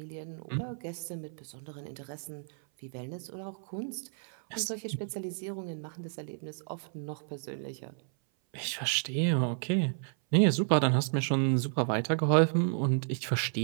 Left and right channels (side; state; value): left; silent; 57 dB below the other